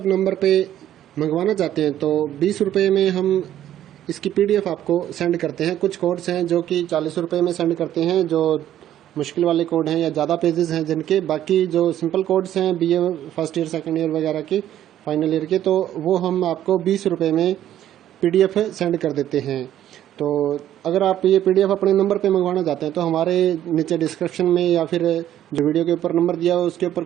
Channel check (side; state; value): left; quieter; 11.7 dB